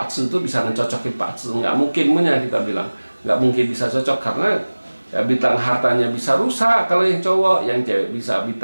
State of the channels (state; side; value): inverted; both; correlation -1.00